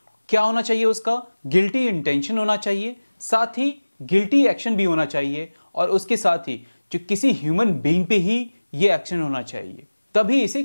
क्या होना चाहिए उसका, गिल्टी इंटेंशन होना चाहिए, साथ ही गिल्टी एक्शन भी होना चाहिए, और उसके साथ ही जो किसी ह्यूमन बीइंग पे ही ये एक्शन होना चाहिए, तभी इसे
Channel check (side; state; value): both; inverted; correlation -1.00